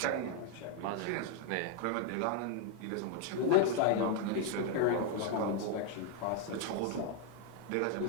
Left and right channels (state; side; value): different; both; correlation 0.01